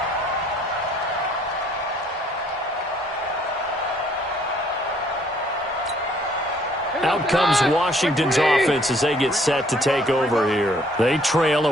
Out comes Washington's offense as they get set to take over here. They trail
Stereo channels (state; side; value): normal; both; correlation 0.62